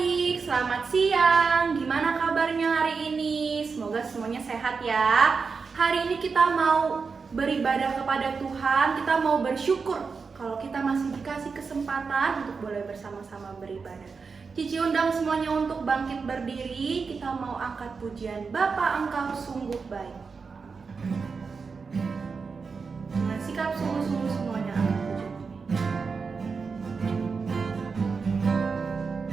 selamat siang. Gimana kabarnya hari ini? Semoga semuanya sehat ya. Hari ini kita mau beribadah kepada Tuhan, kita mau bersyukur kalau kita masih dikasih kesempatan untuk boleh bersama-sama beribadah. Cici undang semuanya untuk bangkit berdiri, kita mau angkat pujian Bapa Engkau sungguh baik. Dengan sikap sungguh-sungguh semuanya angkat pujian.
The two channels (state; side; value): quieter; left; 5.0 dB